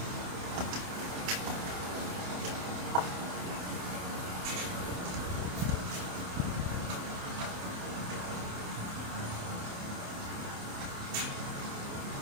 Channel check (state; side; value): late; left; 28 ms